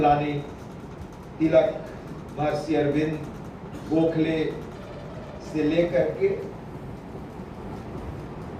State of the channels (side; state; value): both; identical; correlation 1.00